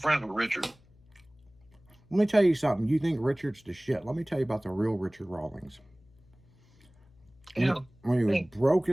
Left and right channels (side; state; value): left; noise; hum, 29 dB below the sound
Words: with Richard. Let me tell you something. You think Richard's the shit? Let me tell you about the real Richard Rawlings. Yeah. When he was broke